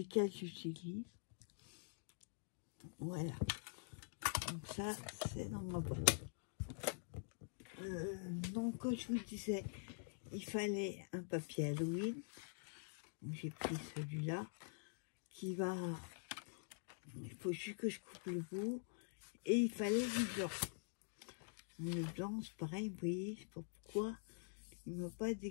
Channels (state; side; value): silent; right; digital silence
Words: j'utilise. Voilà. Donc ça, c'est dans ma boîte. Donc, comme je vous disais, il fallait un papier Halloween. J'ai pris celui-là qui va... Il faut juste que je coupe le bout. Et il fallait du blanc. Le blanc, c'est pareil, vous voyez, je sais pas pourquoi il ne m'a pas